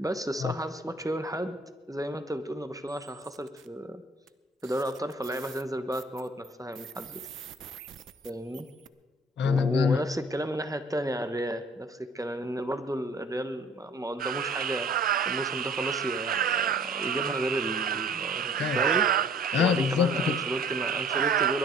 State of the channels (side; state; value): both; normal; correlation 0.52